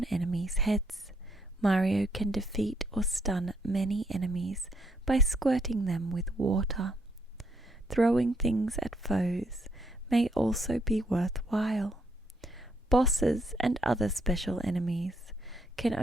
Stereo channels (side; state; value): both; normal; correlation 0.72